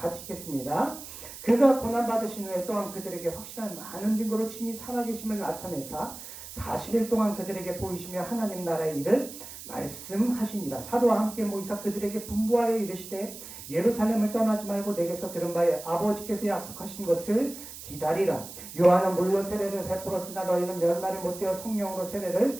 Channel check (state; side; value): noise; right; hiss, 13 dB below the sound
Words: 읽겠습니다. 그가 고난받으신 후에 또한 그들에게 확실한 많은 증거로 친히 살아계심을 나타내사 40일 동안 그들에게 보이시며 하나님 나라의 일을 말씀하시니라. 사도와 함께 모이사 그들에게 분부하여 이르시되 예루살렘을 떠나지 말고 내게서 들은 바에 아버지께서 약속하신 것을 기다리라. 요한은 물로 세례를 베풀었으나 너희는 몇 날이 못되어 성령으로 세례를